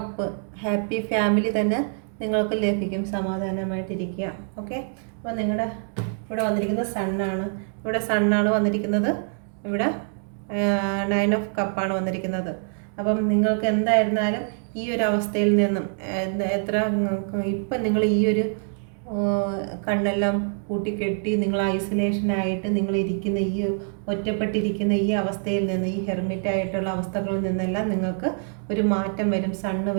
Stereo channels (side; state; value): left; silent; 62 dB below the other